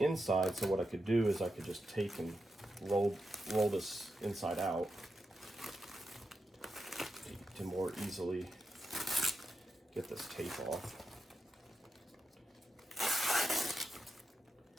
so what I could do is I could just take and roll this inside out to more easily get this tape off.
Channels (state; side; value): normal; both; correlation 0.88